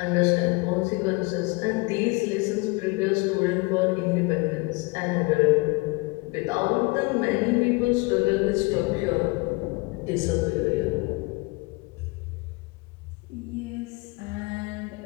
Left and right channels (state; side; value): quieter; right; 26.5 dB